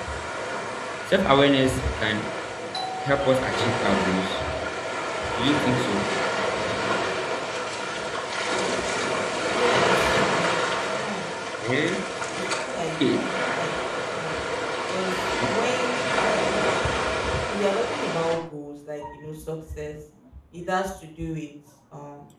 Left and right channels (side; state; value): both; identical; correlation 1.00